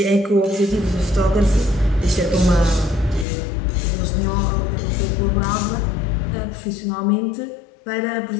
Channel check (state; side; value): drops out; right; at 3.2 s